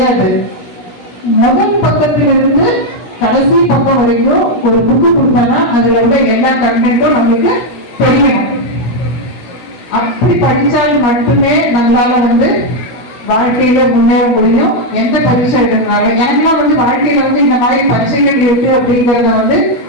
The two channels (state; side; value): late; right; 16 ms